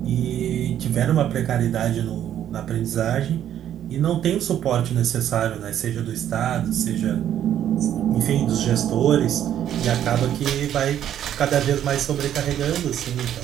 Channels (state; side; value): quieter; left; 10.6 dB